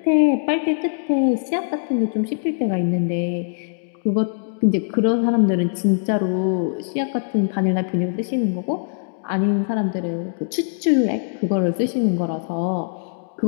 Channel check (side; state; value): right; silent; digital silence